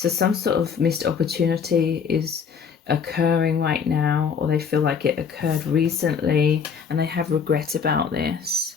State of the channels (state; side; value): quieter; right; 6.4 dB